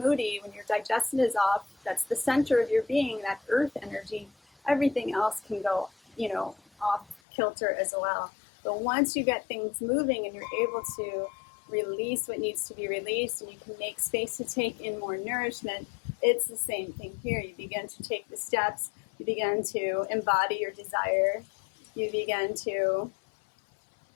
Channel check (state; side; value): drops out; right; at 7.2 s